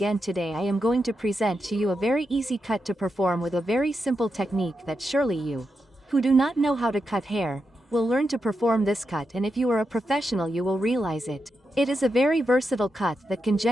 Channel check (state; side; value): normal; both; correlation 0.86